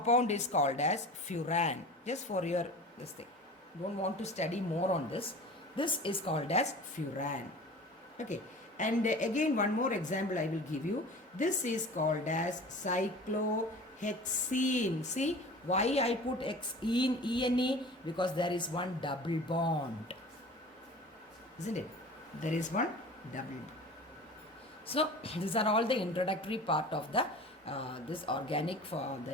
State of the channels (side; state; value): both; normal; correlation 0.39